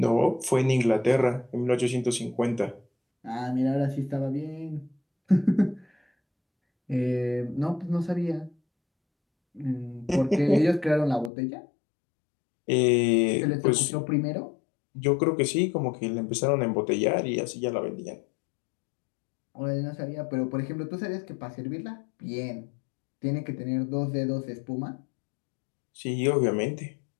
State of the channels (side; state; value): right; drops out; at 11.3 s